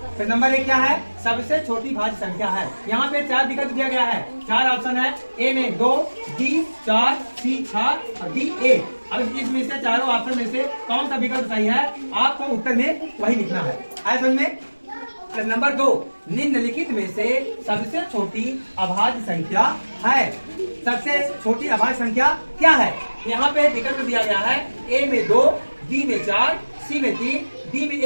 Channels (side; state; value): both; inverted; correlation -1.00